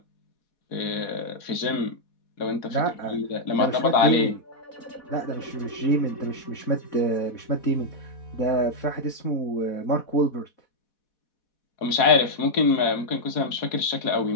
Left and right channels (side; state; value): right; late; 4.1 ms